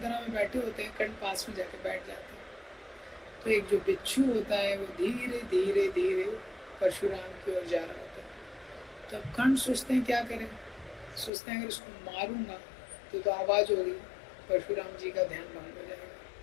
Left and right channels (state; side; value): drops out; right; at 11.3 s